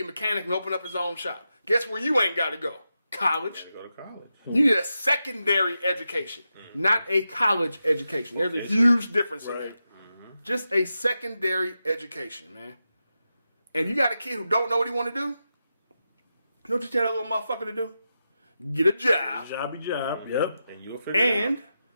mechanic and open up his own shop. Guess where you ain't got to go? College. Go to college. You need a secondary education, not a college education. There's a huge difference in that. Just a secondary education, man. And you got a kid who don't know what he want to do, you know what you tell that little motherfucker to do? Get a job. Jobby job. Yep. And you'll figure it out. And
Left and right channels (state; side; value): inverted; both; correlation -0.89